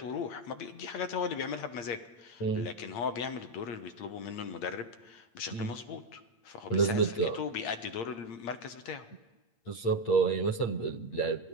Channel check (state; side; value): late; right; 8.7 ms